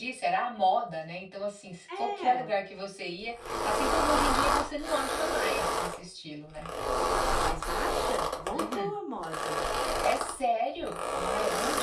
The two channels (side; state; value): both; identical; correlation 1.00